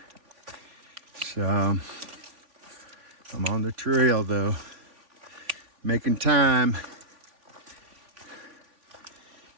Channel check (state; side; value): late; left; 3.5 ms